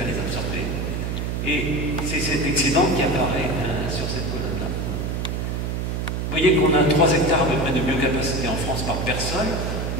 à les absorber. Et c'est cet excédent qui apparaît sur cette colonne-là. Vous voyez qu'on a 3 hectares à peu près de biocapacité en France par personne,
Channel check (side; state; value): right; noise; hum, 2 dB below the sound